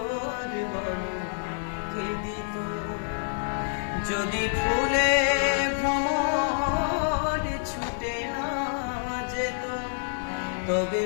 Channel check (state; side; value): silent; right; digital silence